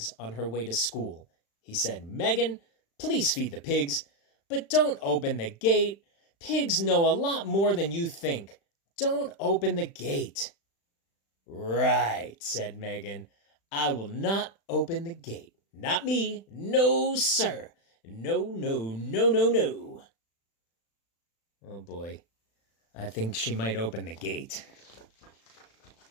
on her way to school. He said, "Megan, please feed the pigs, but don't open the gate. Pigs know a lot more than you think. Don't open the gate." "Right," said Megan. "I will not open the gate. Not me. No, sir. No, no, no, no, no." Oh boy, I think she might open the gate.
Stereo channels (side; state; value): right; late; 36 ms